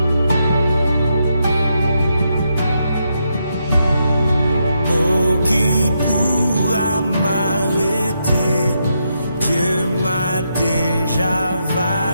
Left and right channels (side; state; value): both; inverted; correlation -0.81